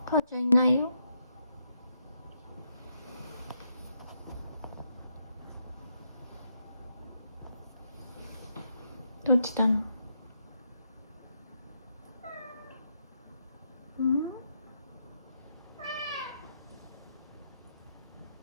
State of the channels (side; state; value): both; inverted; correlation -0.79